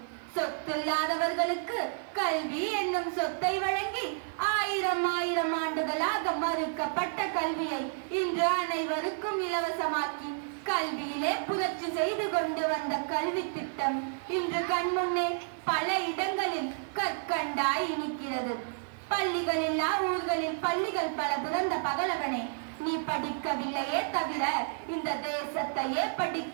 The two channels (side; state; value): left; silent; digital silence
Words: சொத்தில்லாதவர்களுக்கு கல்வி என்னும் சொத்தை வழங்கி 1000 ஆண்டுகளாக மறுக்கப்பட்ட கல்வியை இன்று அனைவருக்கும் இலவசமாக்கி கல்வியிலே புரட்சி செய்து கொண்டு வந்த கல்வி திட்டம் இன்று கண்முன்னே பல இடங்களில் கற்கண்டாய் இனிக்கிறது. பள்ளிகளில்லா ஊர்களில் பள்ளிகள் பல திறந்த பகலவனே, நீ படிக்கவில்லையே தவிர இந்த தேசத்தையே